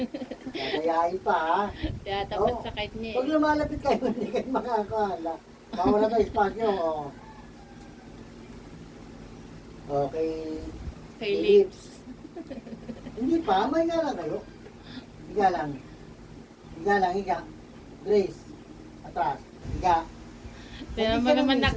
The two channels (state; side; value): identical; both; correlation 1.00